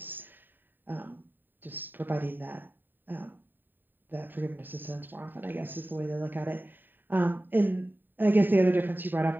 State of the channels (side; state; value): left; late; 0.092 ms